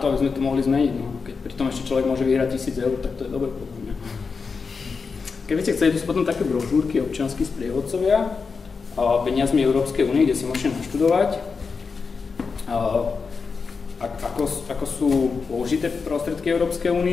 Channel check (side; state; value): right; quieter; 5.0 dB